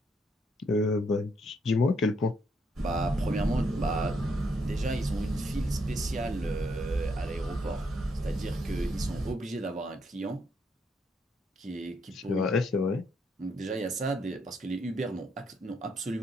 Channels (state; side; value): normal; both; correlation 0.74